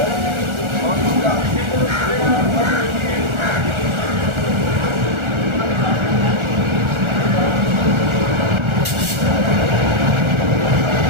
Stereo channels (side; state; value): left; late; 1.4 ms